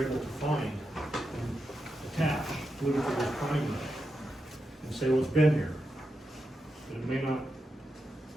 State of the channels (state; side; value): normal; both; correlation 0.87